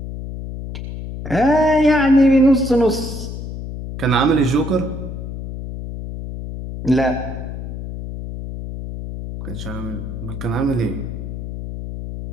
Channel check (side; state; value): left; noise; hum, 8 dB below the sound